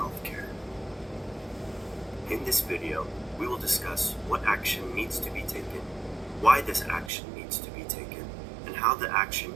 In this video, we will discuss what action needs to be taken, why this action needs to be taken, and how the action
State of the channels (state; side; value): drops out; left; at 7.1 s